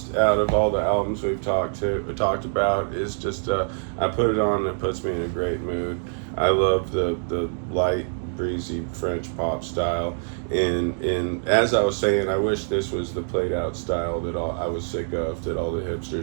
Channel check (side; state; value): left; silent; digital silence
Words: out of all the albums we've talked about. Is just I put it on and it puts me in a great mood. I love the light, breezy French pop style. And as I was saying, I wish this was the played out style that I was sick of, that all the